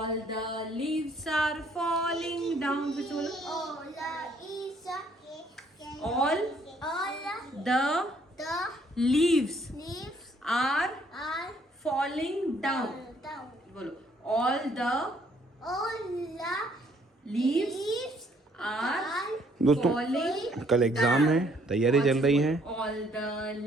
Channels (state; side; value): normal; both; correlation 0.65